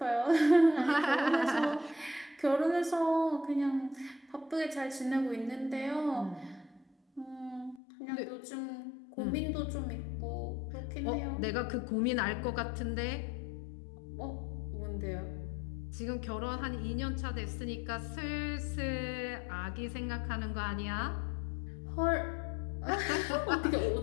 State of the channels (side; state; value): right; drops out; at 7.8 s